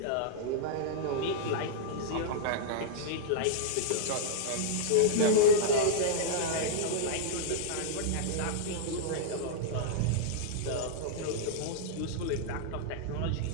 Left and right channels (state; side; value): different; both; correlation -0.02